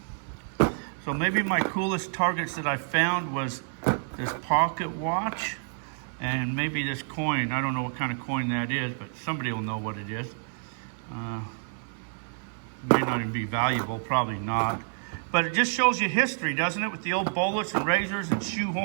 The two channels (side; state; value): left; silent; 59 dB below the other